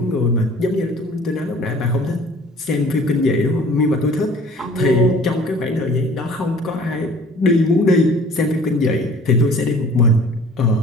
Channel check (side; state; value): both; normal; correlation 0.50